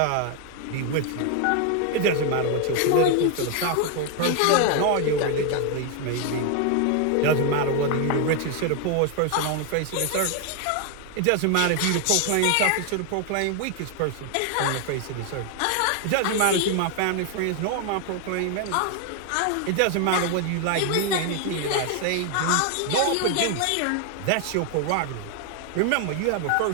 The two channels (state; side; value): different; both; correlation 0.00